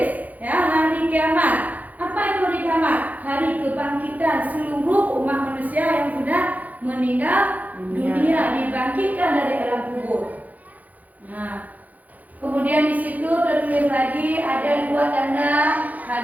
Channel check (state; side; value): late; left; 0.079 ms